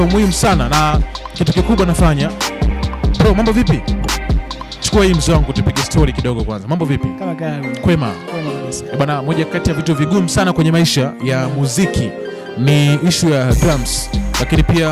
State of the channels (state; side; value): identical; both; correlation 1.00